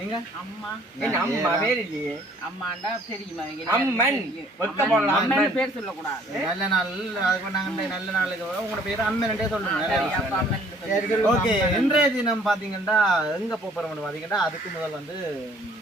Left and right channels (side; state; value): both; normal; correlation 0.58